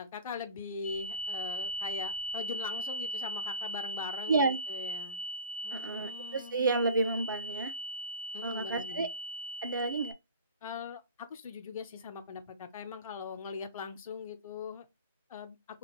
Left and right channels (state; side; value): inverted; both; correlation -0.34